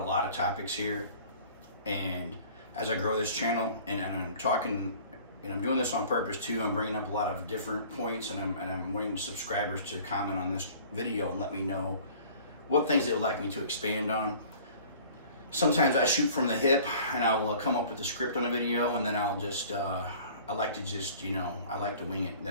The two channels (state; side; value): inverted; both; correlation -0.48